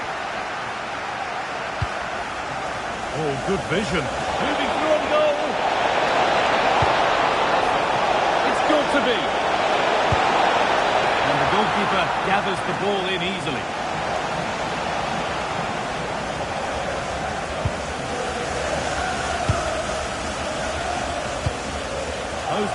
Oh, good vision. Moving through on goal. It's got to be. And the goalkeeper gathers the ball in easily.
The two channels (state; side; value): identical; both; correlation 1.00